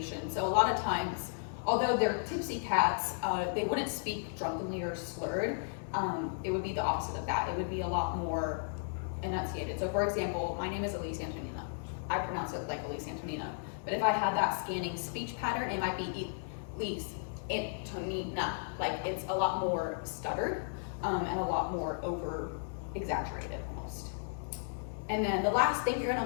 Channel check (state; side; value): silent; right; 55 dB below the other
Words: So a lot of times, although they're tipsy cats, they wouldn't speak drunkenly or slurred. It would be the opposite of that. It would be a lot more enunciated. So for example, my name is Elise Antonina. I pronounce it like Elise Antonina. But if I had that scanning speech pattern, it might be Elise Antonina. Like it's a lot more stuttered and a lot more over exaggerated almost. And then the last thing you're